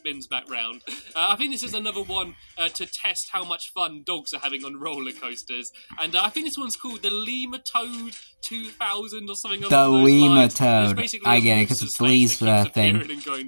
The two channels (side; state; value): both; inverted; correlation -1.00